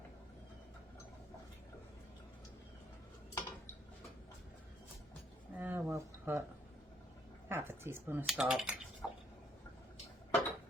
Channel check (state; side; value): normal; both; correlation 0.69